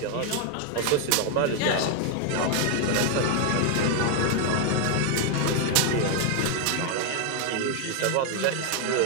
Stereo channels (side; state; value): both; different; correlation 0.01